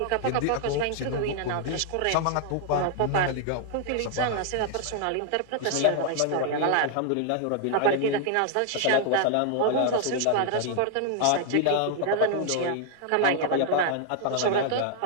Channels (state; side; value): different; both; correlation 0.00